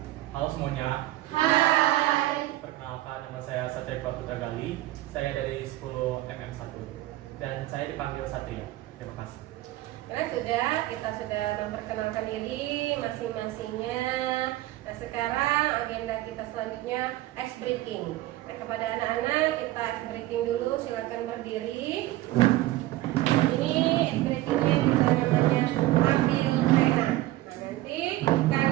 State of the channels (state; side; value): quieter; left; 16.7 dB